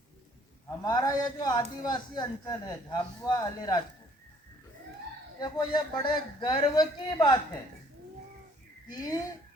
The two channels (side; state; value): both; normal; correlation 0.60